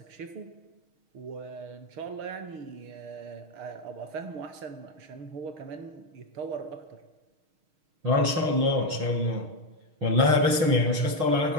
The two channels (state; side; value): late; left; 6.4 ms